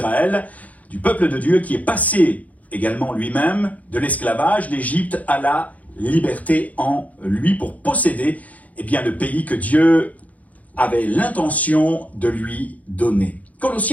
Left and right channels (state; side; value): late; right; 0.072 ms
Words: du peuple de Dieu qui est passé également lui-même de l'esclavage d'Égypte à la liberté en lui pour posséder le pays que Dieu avait l'intention de lui donner.